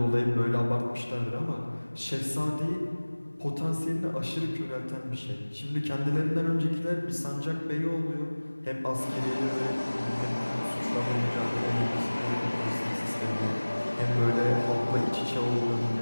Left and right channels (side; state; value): both; inverted; correlation -1.00